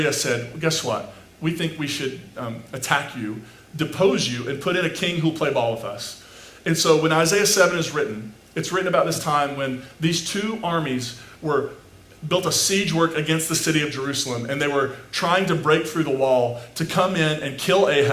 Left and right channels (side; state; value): both; identical; correlation 1.00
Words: said, well, guess what? We think we should attack you, depose you, and put in a king who'll play ball with us. And so when Isaiah 7 is written, it's written about this time when these two armies built a siege work against the city of Jerusalem, and they were trying to break through the wall to come in and kill